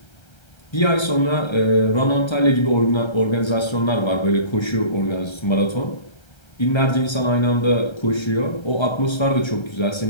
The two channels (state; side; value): late; right; 1.3 ms